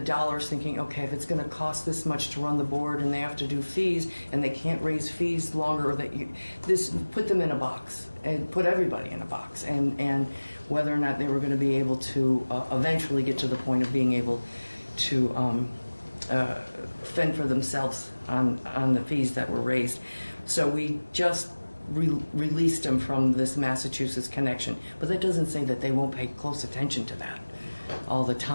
thinking, okay, if it's going to cost this much to run the board and they have to do fees and they can't raise fees longer, put them in a box and put everybody in a box, and whether or not they were going to be able to eventually get to the point of being able to fend for themselves on the fees that were raised. So we just released them from this Massachusetts connection, but that doesn't say that they won't pay close attention to that all the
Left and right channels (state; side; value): inverted; both; correlation -1.00